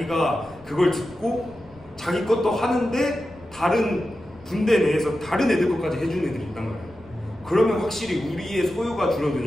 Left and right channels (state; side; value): noise; left; rumble, 25 dB below the sound